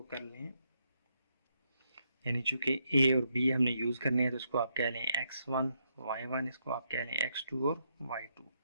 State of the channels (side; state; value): both; inverted; correlation -0.78